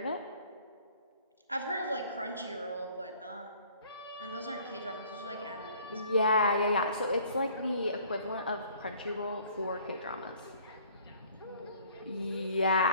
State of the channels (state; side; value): inverted; both; correlation -0.56